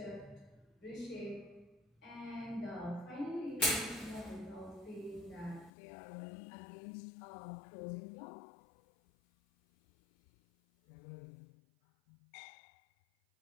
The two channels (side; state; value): right; drops out; at 5.7 s